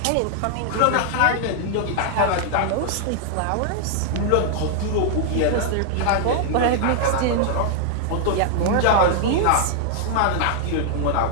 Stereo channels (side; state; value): both; different; correlation 0.00